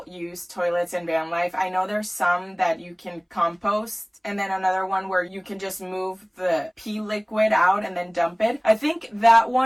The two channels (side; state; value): both; identical; correlation 1.00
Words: use toilets in van life. I know there's some that you can compost, and then another one where you can just move the pee liquid out and then dump it. I think that